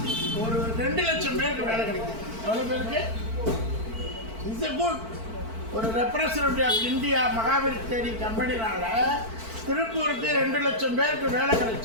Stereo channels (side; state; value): left; late; 4.5 ms